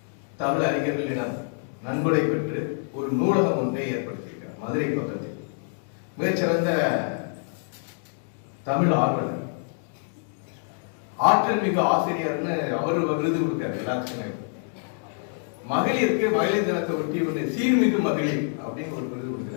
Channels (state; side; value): silent; right; 61 dB below the other